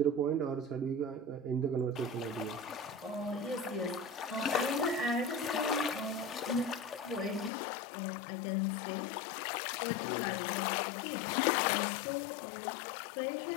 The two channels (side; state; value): right; drops out; at 7.5 s